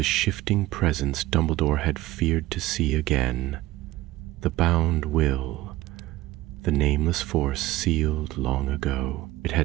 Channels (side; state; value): left; quieter; 17.4 dB